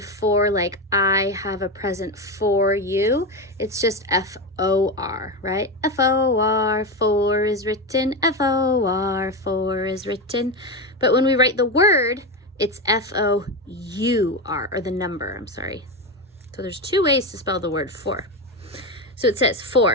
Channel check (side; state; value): both; normal; correlation 0.16